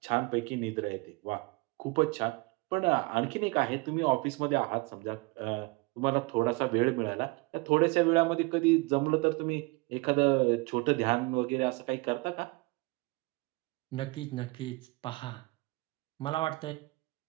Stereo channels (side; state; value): left; quieter; 25.3 dB